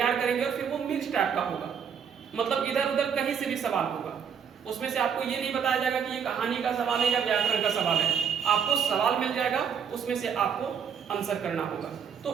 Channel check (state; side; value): quieter; left; 7.3 dB